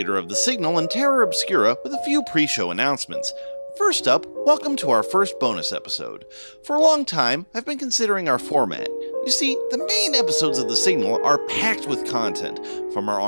of The Signal and Terra Obscura, with a few pre-show announcements. First up, welcome to our first bonus episode. For a long time, I've been considering our format. You see, the main episodes of The Signal are packed with content, from our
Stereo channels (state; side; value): inverted; both; correlation -1.00